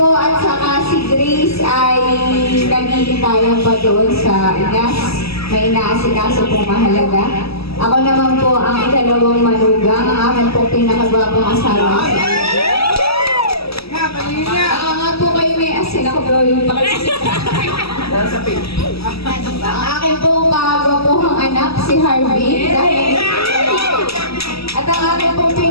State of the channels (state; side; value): late; right; 0.77 ms